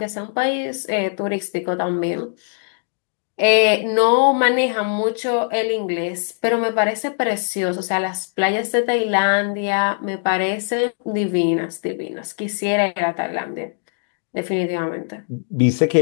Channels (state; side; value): silent; right; 65 dB below the other